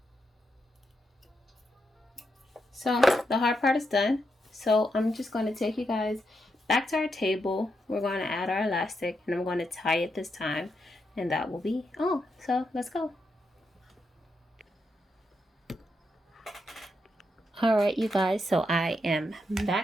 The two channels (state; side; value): normal; both; correlation 0.83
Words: So the hard part is done. So I'm just going to take you guys back to our table. We're going to add our elastic, and I'm going to tie it this time, and that will be all. So let's go. All right, you guys, so I am